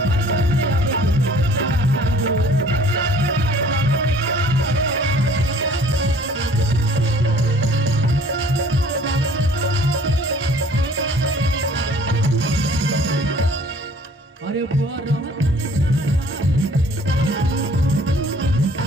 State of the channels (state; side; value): normal; both; correlation 0.54